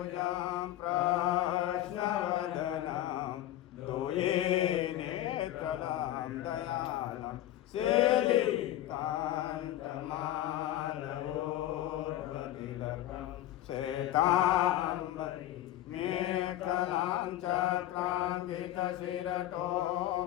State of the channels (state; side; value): quieter; right; 13.6 dB